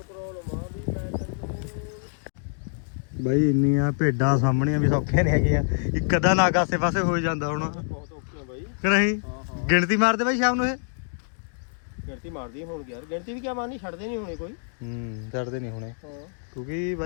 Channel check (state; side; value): silent; right; digital silence